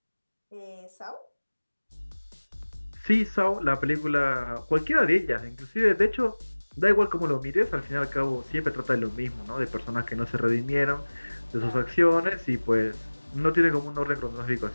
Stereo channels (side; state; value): both; inverted; correlation -1.00